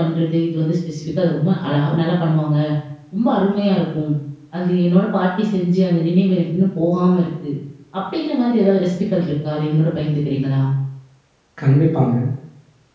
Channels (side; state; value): both; identical; correlation 1.00